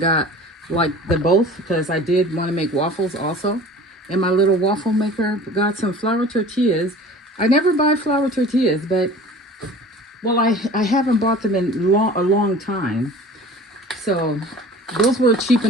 like the both, because I did want to make waffles also. And my little waffle maker got some flour tortillas. I never buy flour tortillas, but well, I haven't bought them in a long time. So those were cheap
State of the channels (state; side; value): normal; both; correlation 0.42